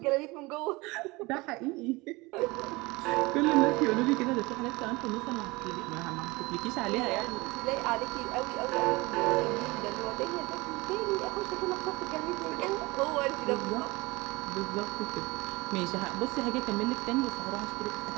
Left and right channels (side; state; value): left; quieter; 23.4 dB